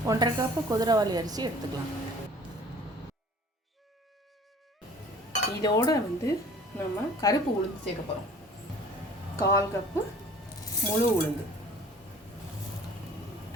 1.5 கப்பு குதிரைவாலி அரிசி எடுத்துக்கலாம். இதோட வந்து நம்ம கருப்பு உளுந்து சேர்க்க போகிறோம். 1/4 கப்பு முழு உளுந்து,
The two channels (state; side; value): normal; both; correlation 0.49